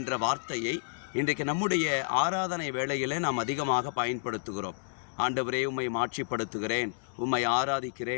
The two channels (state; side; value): silent; right; digital silence